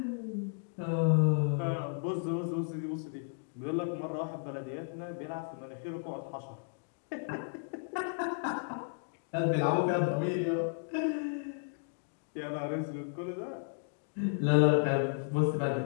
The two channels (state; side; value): silent; right; digital silence